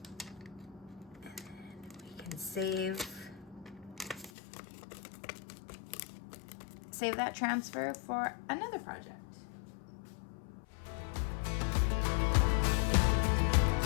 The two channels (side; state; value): right; drops out; at 4.3 s